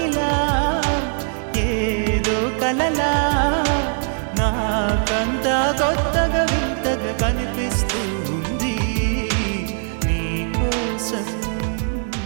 ఏదో కలలా నాకంతా కొత్తగా వింతగా కనిపిస్తూ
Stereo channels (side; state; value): left; silent; 65 dB below the other